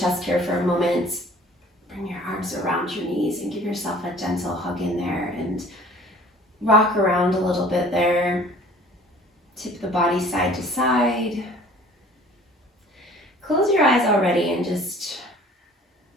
here for a moment. Bring your arms around your knees and give yourself a gentle hug in there and rock around a little bit there. Tip the body side to side. Close your eyes already and just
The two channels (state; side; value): normal; both; correlation 0.50